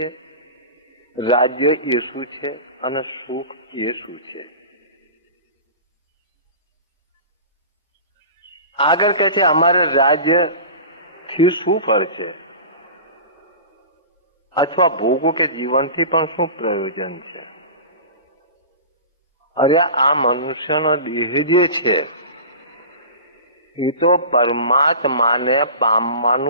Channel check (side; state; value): both; inverted; correlation -0.34